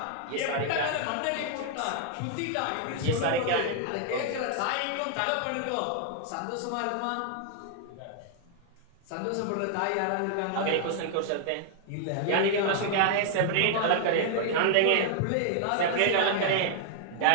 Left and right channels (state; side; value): different; both; correlation -0.01